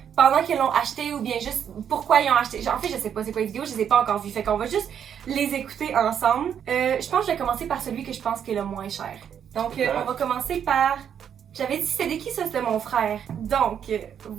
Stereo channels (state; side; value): quieter; left; 8.5 dB